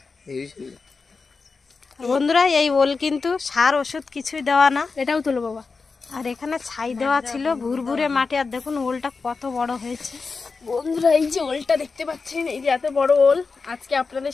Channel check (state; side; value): quieter; right; 4.5 dB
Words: বন্ধুরা এই ওল কিন্তু সার ওষুধ কিছুই দেওয়া না। এটাও তোলো বাবা। আর এখানে ছাই দেওয়া ছিল ভুরভুরে মাটি। আর দেখুন ওলটা কত বড় হয়েছে। বন্ধুরা এই যে ওলটা দেখতে পাচ্ছেন, এই যে এত বড় ওল, আজকে আপনাদের